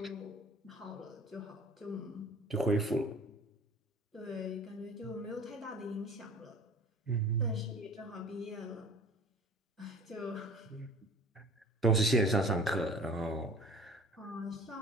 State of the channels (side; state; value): both; normal; correlation 0.45